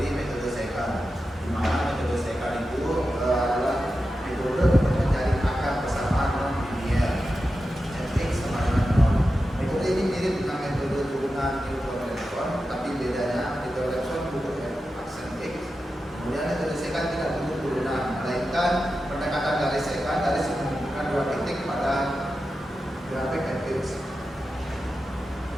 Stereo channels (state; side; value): normal; both; correlation 0.91